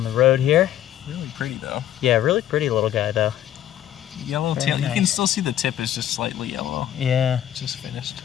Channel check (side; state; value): right; quieter; 11.6 dB